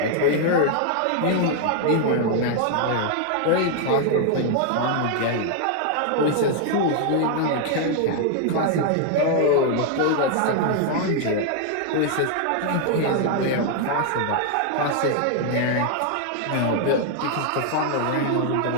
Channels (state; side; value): different; both; correlation 0.00